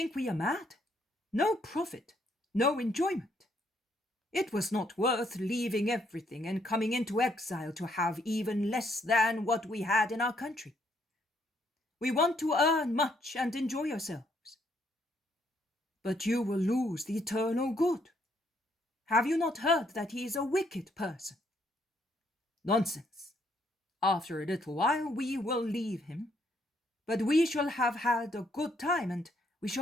we are mad? No profit, no enjoyment. It was not worth leaving everything and coming into exile to have even less than what we had in our country. We want to earn much and enjoy ourselves. But you will lose the eternal good, Have you not heard that he is a wicked person? Nonsense. After a little while we will leave him, but we shall have had a good time and we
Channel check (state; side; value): normal; both; correlation 0.71